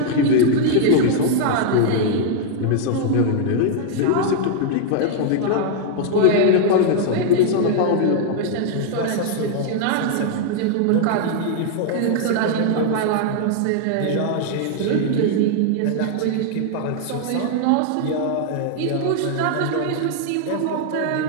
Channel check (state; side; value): different; both; correlation 0.00